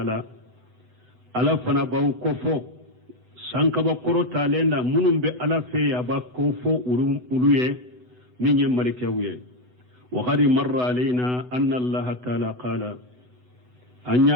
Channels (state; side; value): late; left; 8.0 ms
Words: ala fana baw kofo sankaba koro talenda munum be ala fe aba kofo uluye minye malikawye wa qad marra alaina anna allah ta'ala qala